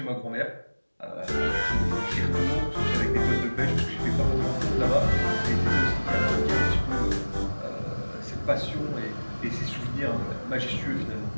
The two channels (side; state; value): both; inverted; correlation -1.00